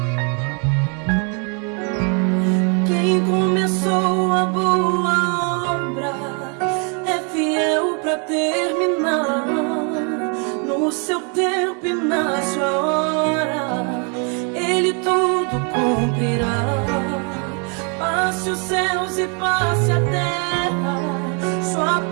Quem começou a boa obra é fiel pra terminar. No seu tempo e na sua hora, Ele tudo cumprirá. Passe os céus e passe a terra, sua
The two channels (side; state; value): left; quieter; 37.1 dB